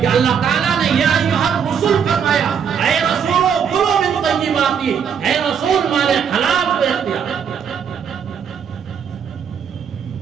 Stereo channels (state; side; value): quieter; left; 7.4 dB